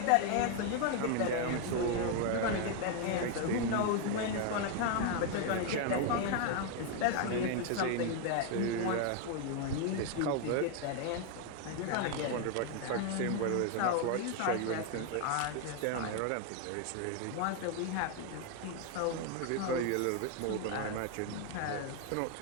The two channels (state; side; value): different; both; correlation 0.01